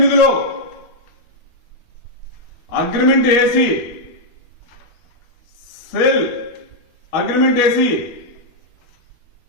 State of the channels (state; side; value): late; right; 12 ms